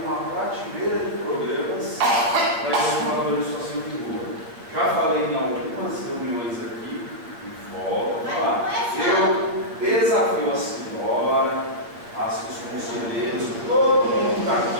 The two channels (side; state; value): left; late; 8.3 ms